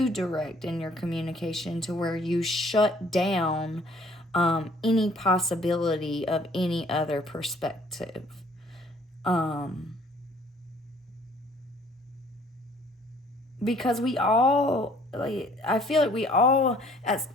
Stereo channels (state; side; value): normal; both; correlation 0.58